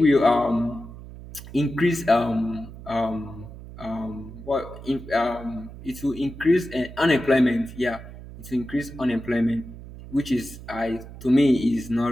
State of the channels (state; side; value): noise; right; hum, 14 dB below the sound